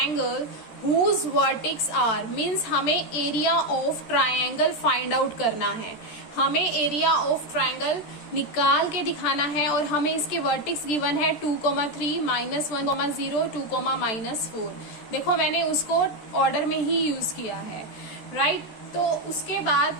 whose vertex are, means हमें area of triangle find out करना है। हमें एरिया ऑफ ट्राइंगल निकाल के दिखाना है और हमें इसके वर्टेक्स गिवन है 2,3, -1,0, 2, -4। देखो मैंने उसको ऑर्डर में ही यूज किया है, राइट? तो उसके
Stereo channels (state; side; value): late; right; 13 ms